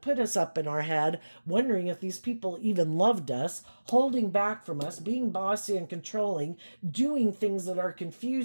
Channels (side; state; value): both; inverted; correlation -1.00